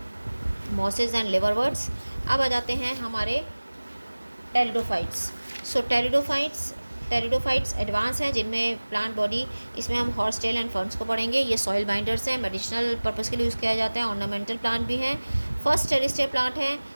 मॉसेस एंड लिवरवर्ट्स। अब आ जाते हैं हमारे टेरिडोफाइट्स। सो टेरिडोफाइट्स एडवांस हैं जिनमें प्लांट बॉडी, इसमें हम हॉर्स टेल एंड फर्न्स को पढ़ेंगे। ये सॉइल बाइंडर्स हैं, मेडिसिनल पर्पज़ के लिए यूज़ किया जाता है, ऑर्नामेंटल प्लांट भी हैं। फर्स्ट टेरिस्टियर प्लांट है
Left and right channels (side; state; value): both; inverted; correlation -1.00